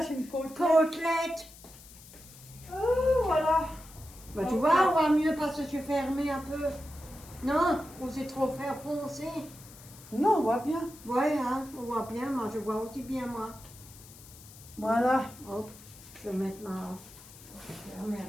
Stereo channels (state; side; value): noise; left; hiss, 20 dB below the sound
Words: une côtelette. Côtelette. Oh, voilà. Bah, tu vois, on voit mieux parce que je suis fermée un peu. Non, ou c'est trop faire foncer. Non, on voit bien. Ouais, hein, on voit bien, moi je vois aussi bien, moi. Voilà. Hop, je vais mettre ma... Je vais remettre